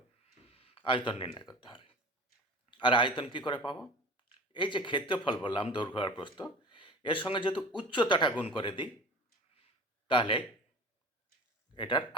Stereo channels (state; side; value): normal; both; correlation 0.38